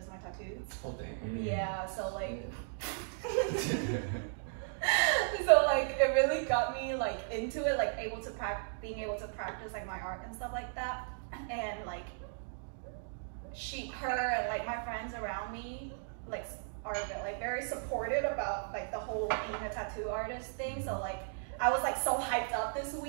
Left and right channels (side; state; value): left; silent; digital silence